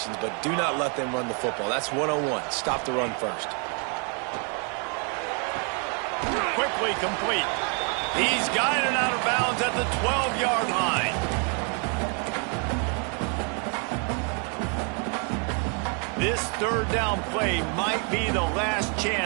but do not let them run the football. That's 101. Stop the run first. Quickly complete. He's guided out of bounds at the 12-yard line. This third down play might be the last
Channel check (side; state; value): left; quieter; 38.2 dB